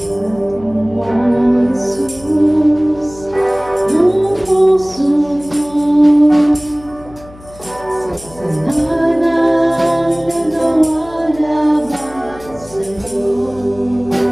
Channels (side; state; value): left; noise; hum, 21 dB below the sound